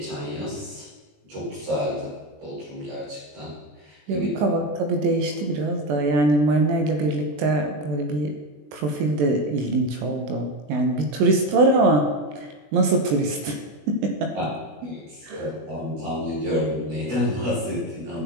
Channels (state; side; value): late; left; 20 ms